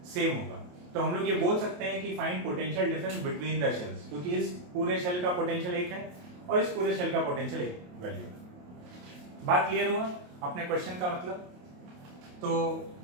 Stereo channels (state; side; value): late; left; 28 ms